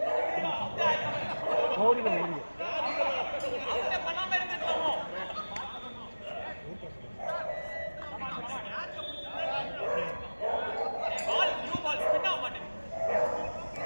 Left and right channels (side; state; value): both; inverted; correlation -1.00